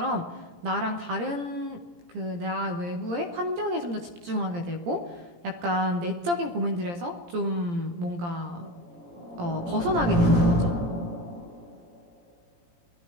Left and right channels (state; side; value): late; left; 17 ms